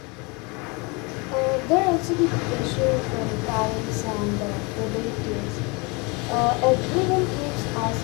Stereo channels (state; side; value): quieter; right; 29.0 dB